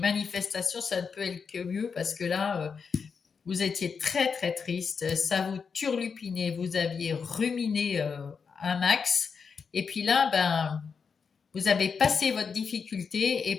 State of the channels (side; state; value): right; quieter; 5.8 dB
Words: ça ne peut aller que mieux parce que là, vous étiez très très triste, ça vous turlupinait, vous aviez ruminé un max, et puis là, ben, vous avez passé votre difficulté,